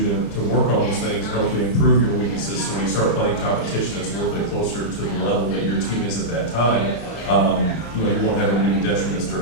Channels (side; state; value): right; late; 34 ms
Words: to work on those things and hopefully improve your weaknesses. So when you start playing competition that's a little bit closer to the level that your team is at that time, you know, you won't have any detriments